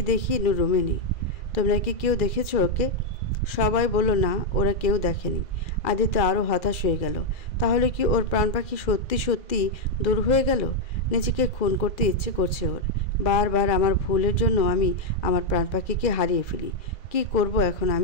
দেখি নূর রুমে নেই। তোমরা কি কেউ দেখেছো ওকে? সবাই বলল না, ওরা কেউ দেখেনি। আদিত্য আরও হতাশ হয়ে গেল। তাহলে কি ওর প্রাণ পাখি সত্যি সত্যি দূর হয়ে গেল? নিজেকে খুন করতে ইচ্ছে করছে ওর। বারবার আমার ভুলের জন্য আমি আমার প্রাণ পাখিকে হারিয়ে ফেলি। কি করব এখন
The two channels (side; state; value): right; late; 2.0 ms